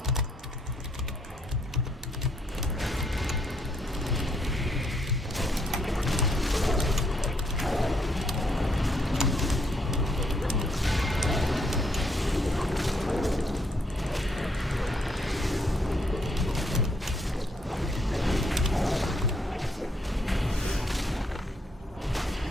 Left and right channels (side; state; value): both; normal; correlation 0.72